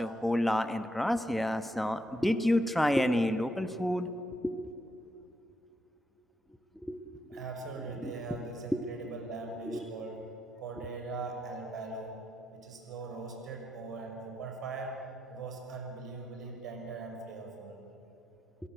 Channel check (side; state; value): both; normal; correlation 0.82